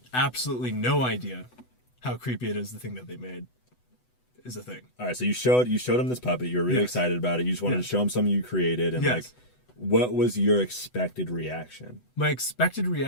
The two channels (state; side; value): late; right; 8.0 ms